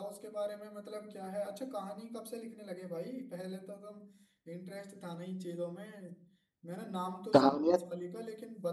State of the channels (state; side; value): identical; both; correlation 1.00